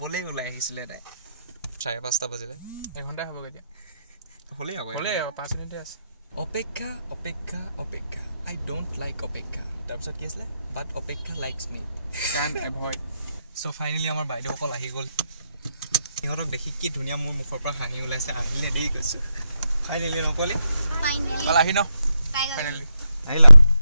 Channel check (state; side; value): inverted; both; correlation -0.85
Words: ওলাই আহিছিলে তাই 5:30 বাজিলে এঘণ্টাই হ'ব কেতিয়া হ'লেই আকৌ 5 মিনিটে আছে অপেক্ষা আই ডোণ্ট লাইক অপেক্ষা তাৰপিছত কি আছিলে বাট অপেক্ষা লাইকছ মি চ' ফাইনেলি আমাৰ বাইদেউসকল আহি গ'ল সিহঁতক দেখি কি ধুনীয়া মোৰ মুখৰ পৰা হাঁহি ওলাইছে আহিলে দেই কৈছোঁ ফাইনেলি নকলি আহি ন আহিলা